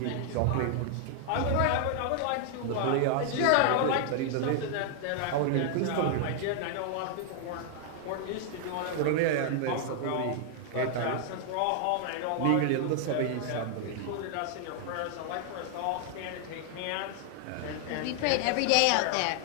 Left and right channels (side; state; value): both; different; correlation 0.00